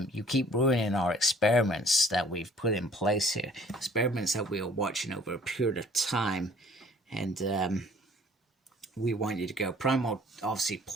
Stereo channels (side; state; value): both; normal; correlation 0.54